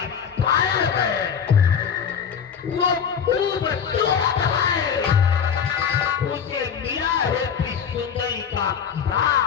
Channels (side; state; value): right; quieter; 7.4 dB